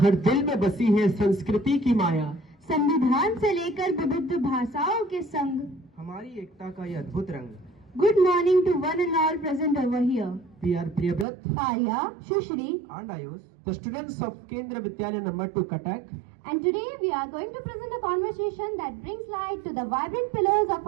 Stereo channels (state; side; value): drops out; left; at 11.2 s